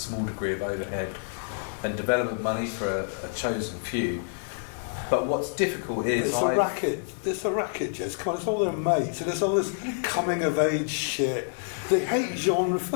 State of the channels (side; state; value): right; silent; digital silence